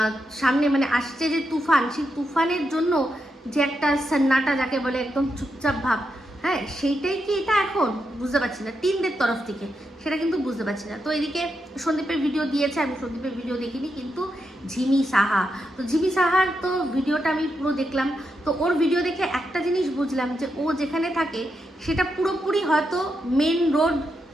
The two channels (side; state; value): both; normal; correlation 0.84